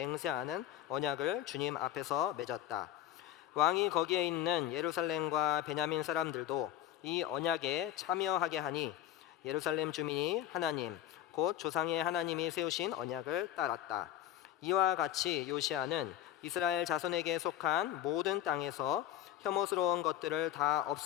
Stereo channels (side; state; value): right; quieter; 12.3 dB